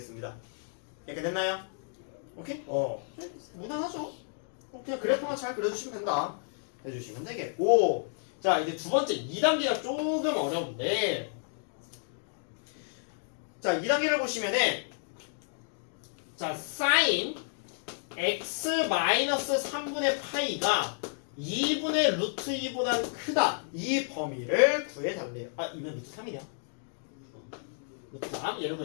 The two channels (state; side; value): silent; right; digital silence